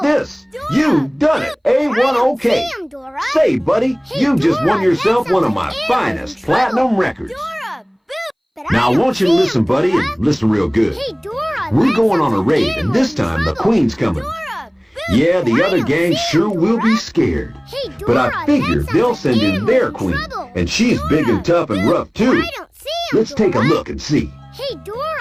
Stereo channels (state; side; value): identical; both; correlation 1.00